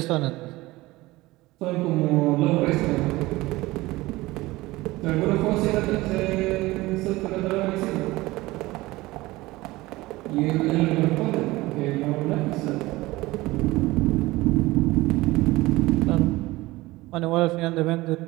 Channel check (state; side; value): quieter; left; 19.6 dB